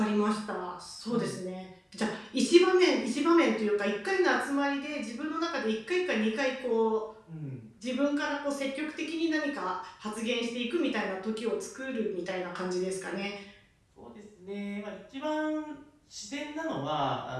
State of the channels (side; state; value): both; identical; correlation 1.00